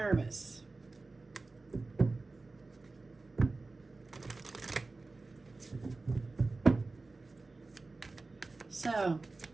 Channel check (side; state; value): left; quieter; 3.5 dB